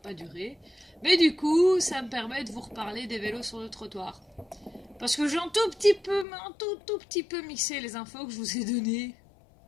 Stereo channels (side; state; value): right; drops out; at 6.2 s